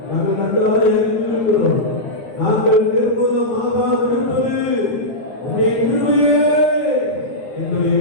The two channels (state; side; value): late; right; 12 ms